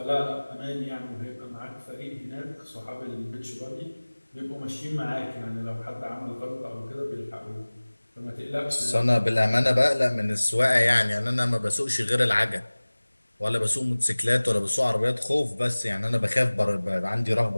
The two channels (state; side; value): inverted; both; correlation -1.00